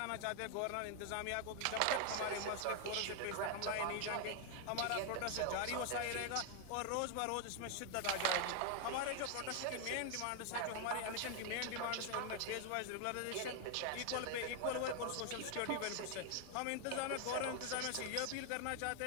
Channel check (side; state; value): both; different; correlation 0.00